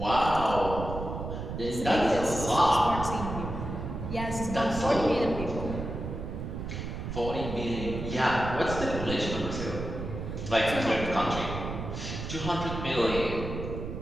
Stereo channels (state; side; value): noise; right; rumble, 6 dB below the sound